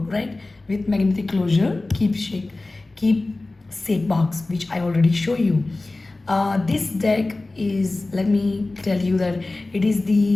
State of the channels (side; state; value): right; quieter; 3.1 dB